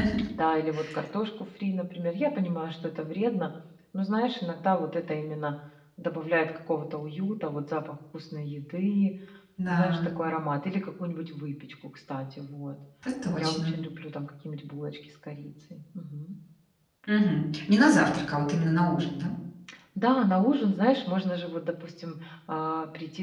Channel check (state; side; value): identical; both; correlation 1.00